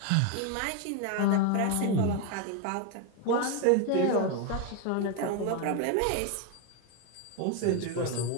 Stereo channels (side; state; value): both; different; correlation 0.02